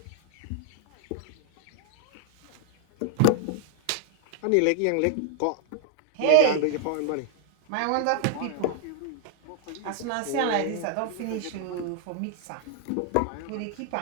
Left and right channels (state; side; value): different; both; correlation 0.00